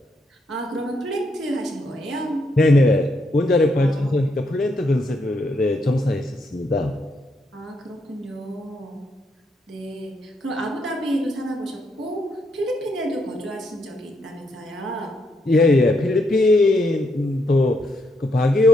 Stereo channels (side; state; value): both; normal; correlation 0.77